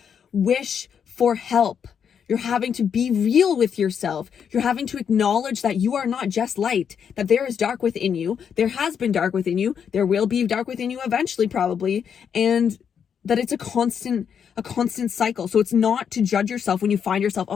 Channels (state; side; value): quieter; right; 7.6 dB